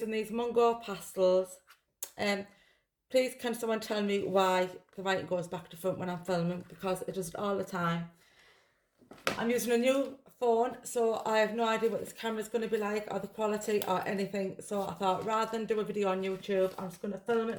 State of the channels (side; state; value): both; identical; correlation 1.00